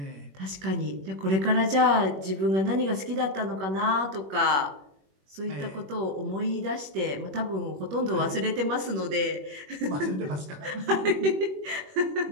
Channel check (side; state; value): left; late; 21 ms